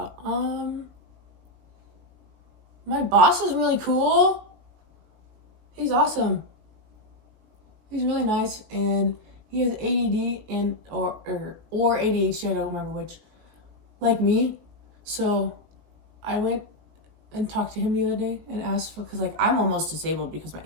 My boss is really cool. He's awesome. He's really nice, and he has ADD and or ADHD. I don't remember which. Like me, so I went and talked to him the other day and asked for, because like I'm almost disabled because my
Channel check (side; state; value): left; late; 19 ms